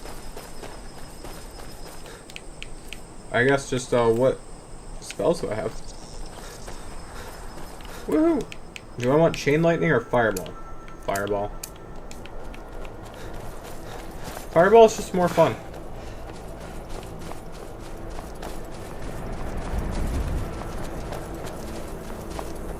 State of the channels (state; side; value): identical; both; correlation 1.00